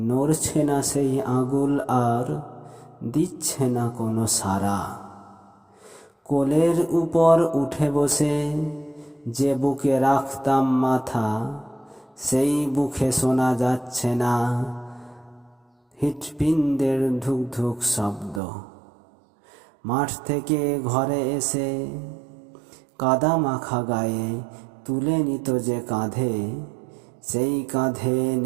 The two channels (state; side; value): drops out; left; at 18.4 s